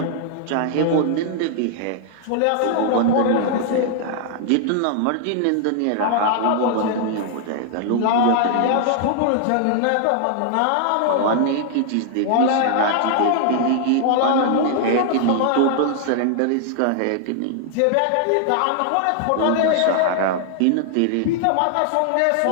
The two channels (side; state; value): both; different; correlation 0.00